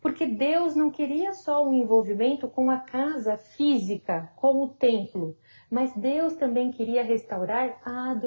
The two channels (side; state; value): both; inverted; correlation -1.00